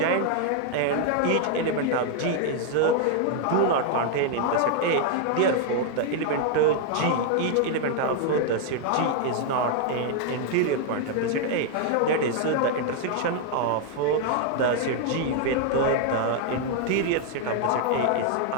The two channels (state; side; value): different; both; correlation 0.00